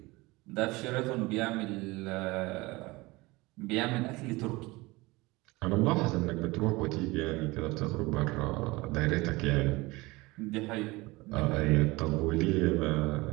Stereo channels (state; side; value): quieter; left; 22.2 dB